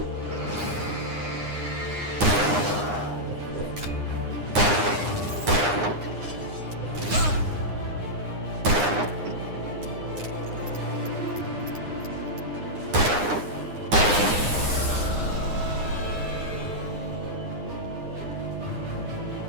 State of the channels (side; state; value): left; late; 9.8 ms